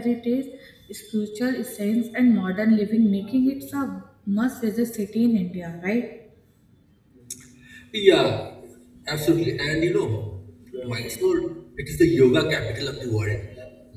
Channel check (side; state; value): both; identical; correlation 1.00